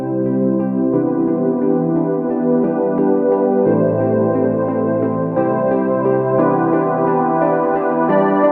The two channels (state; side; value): identical; both; correlation 1.00